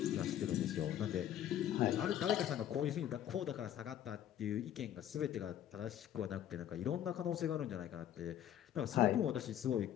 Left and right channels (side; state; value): right; quieter; 11.0 dB